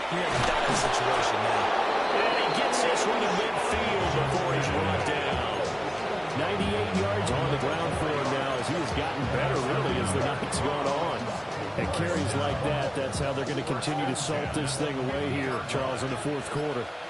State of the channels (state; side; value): identical; both; correlation 1.00